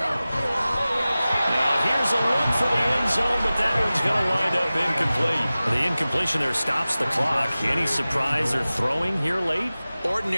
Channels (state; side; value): inverted; both; correlation -0.97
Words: Now here's a look for the end zone, but that one's going to wind up incomplete. The incompletion there stops the clock. Any surprise they're throwing here late?